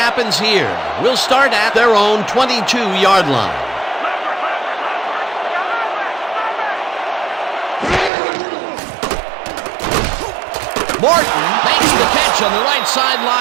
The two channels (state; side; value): drops out; left; at 8.1 s